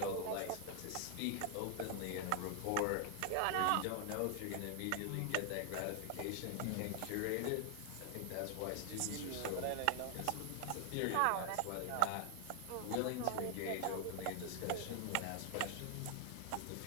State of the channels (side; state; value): both; different; correlation 0.00